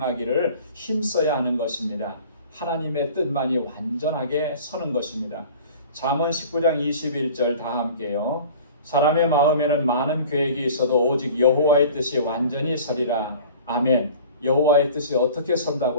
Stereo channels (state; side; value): inverted; both; correlation -0.44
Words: 힘써야 하는 것입니다. 하나님의 뜻만이 완전하게 서는 것입니다. 잠언 19장 21절 다 함께요. 사람의 마음에는 많은 계획이 있어도 오직 여호와의 뜻이 완전히 서리라. 아멘. 여호와의 뜻이 어떻게